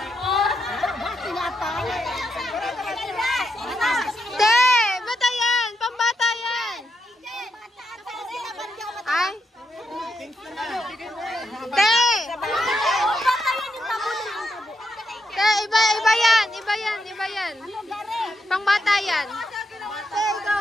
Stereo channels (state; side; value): normal; both; correlation 0.82